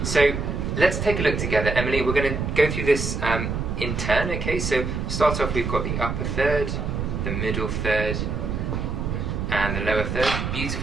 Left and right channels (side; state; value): right; noise; rumble, 2 dB below the sound